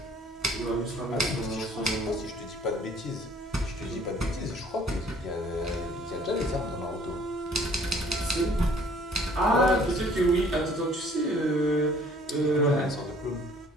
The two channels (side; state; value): both; normal; correlation 0.56